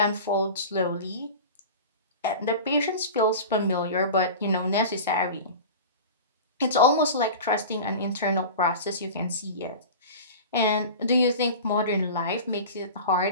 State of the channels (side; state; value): both; inverted; correlation -0.33